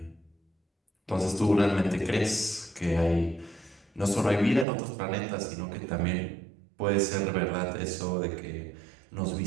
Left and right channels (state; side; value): drops out; left; at 4.7 s